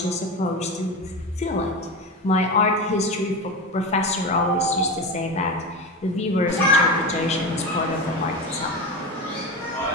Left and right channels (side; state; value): both; normal; correlation 0.22